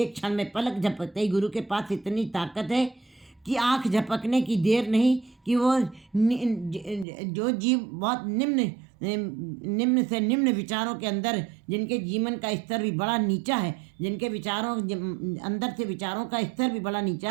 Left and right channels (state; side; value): drops out; left; at 7.1 s